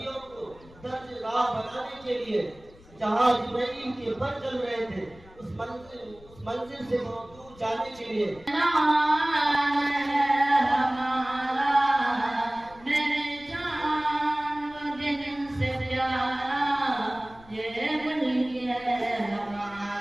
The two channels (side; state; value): left; noise; rumble, 24 dB below the sound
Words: को दर्ज राह बनाने के लिए जहाँ जिब्राइल के पर चल रहे थे उस मंजिल से बहुत दूर जाने के लिए